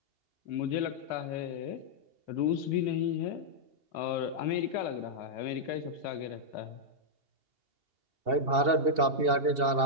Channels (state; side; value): late; left; 2.7 ms